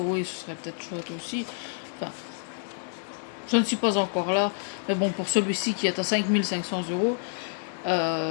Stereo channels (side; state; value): right; silent; 59 dB below the other